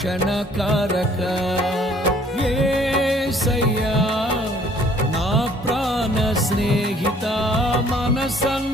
కారక యేసయ్యా నా ప్రాణ స్నేహిత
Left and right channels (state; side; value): normal; both; correlation 0.58